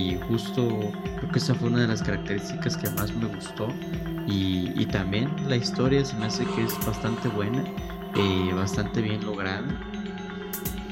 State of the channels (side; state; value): both; identical; correlation 1.00